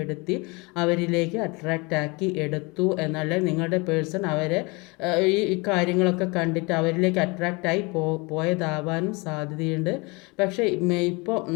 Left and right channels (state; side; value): quieter; right; 27.3 dB